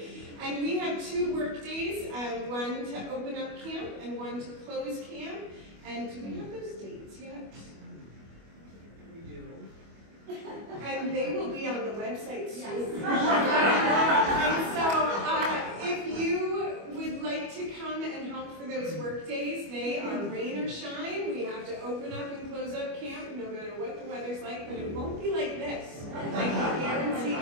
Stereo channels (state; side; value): late; left; 25 ms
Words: And we have 2 work days, one to open up camp and one to close camp. And do we have those dates yet? We do. And they will be on the website soon. And so if you would like to come and help for those work days, they are rain or shine. We have to open up and close up camp no matter what the weather's like, but it won't be like this. I can guarantee